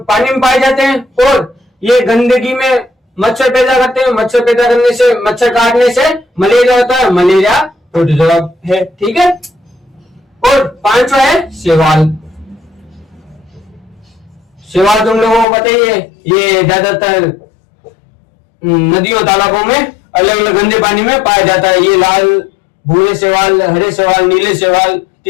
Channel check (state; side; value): drops out; right; at 15.5 s